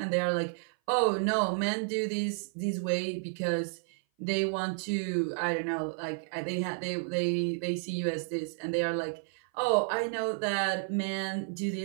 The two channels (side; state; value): left; silent; 56 dB below the other